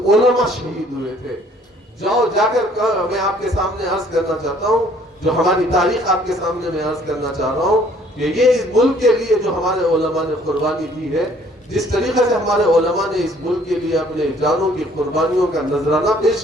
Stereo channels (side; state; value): both; normal; correlation 0.59